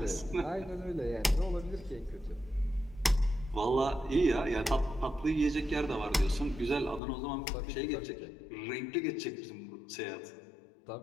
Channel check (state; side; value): drops out; right; at 7.0 s